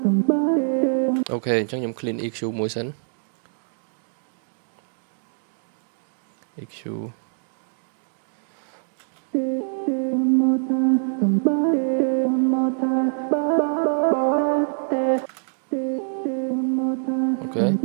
អូខេអញ្ចឹងខ្ញុំ clean EQ មួយសិន EQ okay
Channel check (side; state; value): left; silent; digital silence